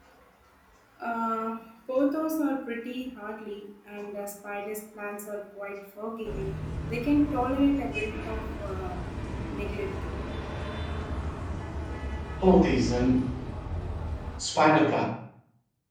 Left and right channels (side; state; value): both; identical; correlation 1.00